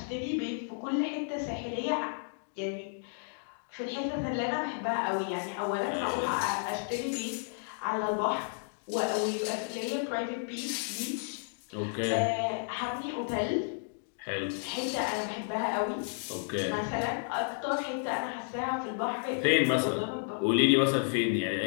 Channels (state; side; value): silent; right; digital silence